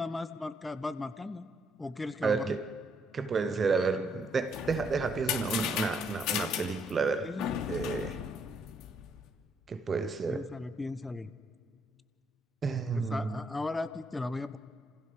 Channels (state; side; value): normal; both; correlation 0.72